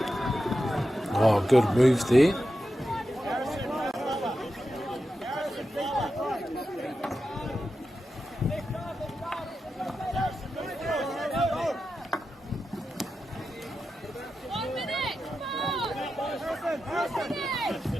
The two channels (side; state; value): both; normal; correlation 0.90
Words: Oh, good move there.